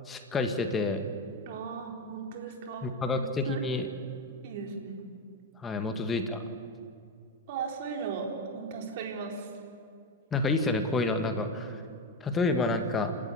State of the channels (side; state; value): both; normal; correlation 0.14